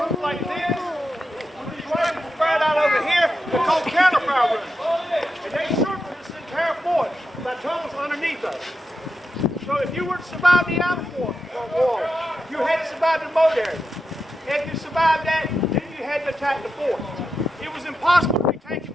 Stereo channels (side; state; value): both; normal; correlation 0.88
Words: like this. With these rifles spread out over here, they're called counterfire rooms. And they circle this entire fort by tunnels underneath us. So if you were to survive the outer fort wall, you had to survive the moat area. If you survived that, then you had to attack the fort. It was impossible to be taken